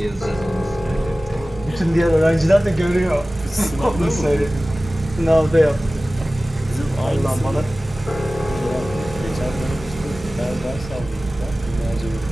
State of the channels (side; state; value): both; normal; correlation 0.97